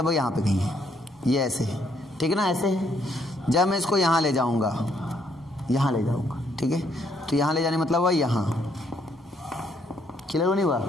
यहाँ पे कहीं है, ये ऐसे है, ठीक है ना? ऐसे है। जब मैं इसको यहाँ ले जाऊंगा, यहाँ ले जाऊंगा, ठीक है? तो यहाँ ले जाने मतलब हुआ यहाँ, क्लियर नहीं हुआ?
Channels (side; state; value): both; normal; correlation 0.71